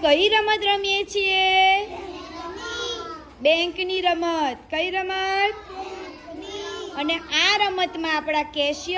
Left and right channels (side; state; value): both; identical; correlation 1.00